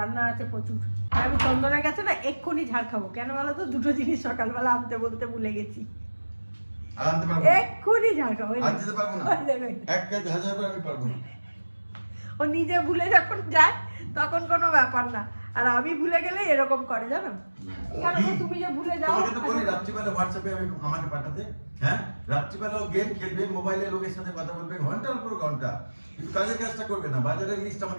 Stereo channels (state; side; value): inverted; both; correlation -1.00